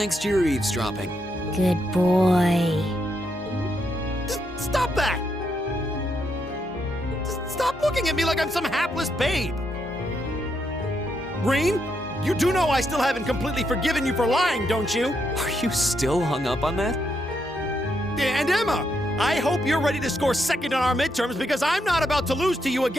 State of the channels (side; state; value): both; normal; correlation 0.79